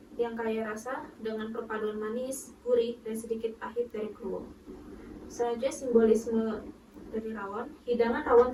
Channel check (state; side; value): identical; both; correlation 1.00